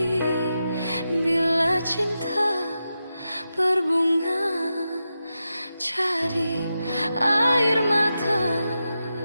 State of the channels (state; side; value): inverted; both; correlation -0.89